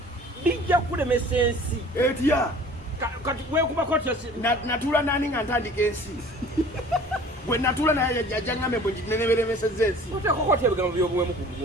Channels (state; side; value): normal; both; correlation 0.47